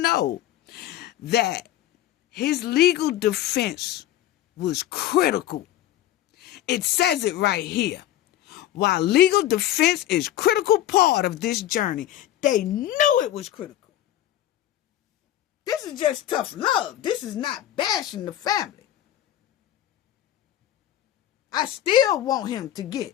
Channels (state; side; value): quieter; right; 12.8 dB